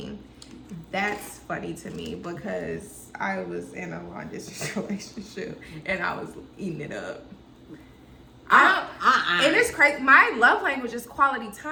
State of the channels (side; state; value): both; identical; correlation 1.00